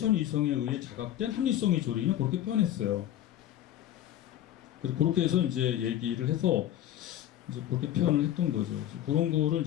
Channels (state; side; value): quieter; right; 12.1 dB